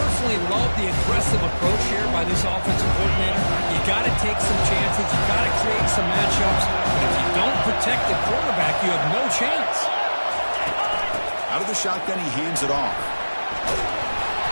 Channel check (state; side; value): inverted; both; correlation -1.00